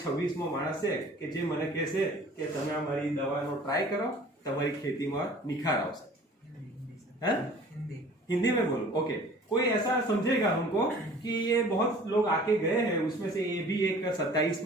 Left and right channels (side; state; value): both; normal; correlation 0.48